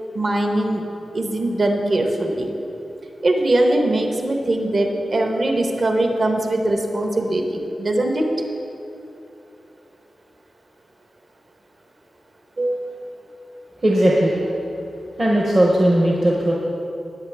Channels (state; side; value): normal; both; correlation 0.94